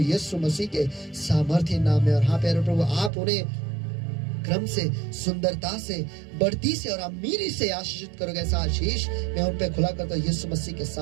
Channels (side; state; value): left; drops out; at 3.1 s